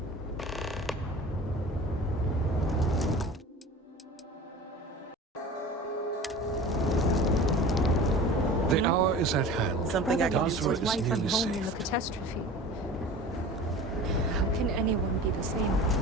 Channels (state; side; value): normal; both; correlation 0.38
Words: The hour is at hand. Something I can do Basra his is wife nearly and home in the saved. catastrophe. How can anyone be the same